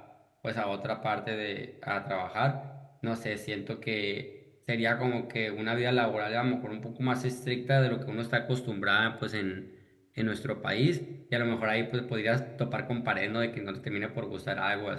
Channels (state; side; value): identical; both; correlation 1.00